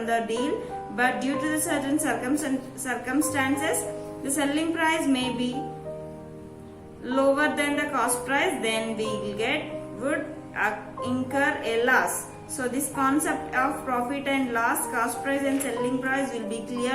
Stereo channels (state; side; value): identical; both; correlation 1.00